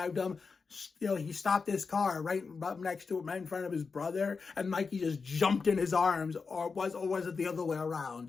him. He stopped his car right up next to him, right in front of his brother, and Mikey just jumped in his arms, or was it the other way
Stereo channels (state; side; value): quieter; right; 4.9 dB